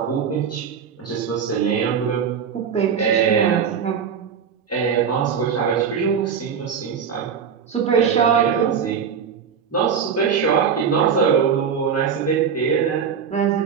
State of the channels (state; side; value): quieter; left; 7.0 dB